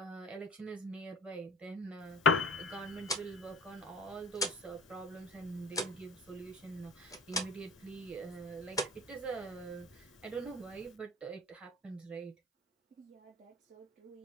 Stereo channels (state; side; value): normal; both; correlation 0.40